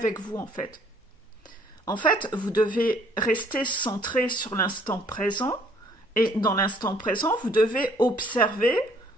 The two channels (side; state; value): both; normal; correlation 0.61